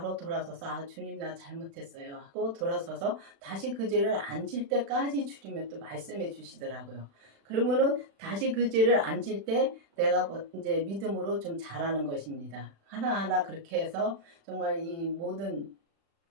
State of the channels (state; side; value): late; left; 36 ms